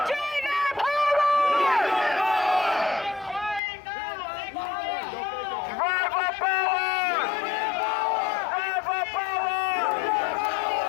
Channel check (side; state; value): right; drops out; at 3.6 s